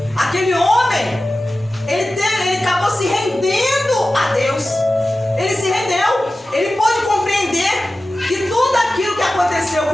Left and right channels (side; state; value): both; normal; correlation 0.95